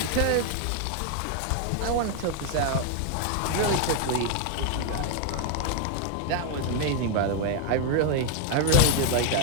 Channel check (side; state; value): both; different; correlation 0.00